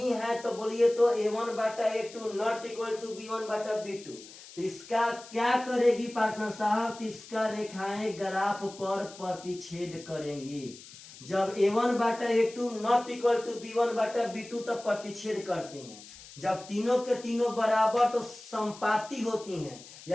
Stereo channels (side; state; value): left; noise; hiss, 18 dB below the sound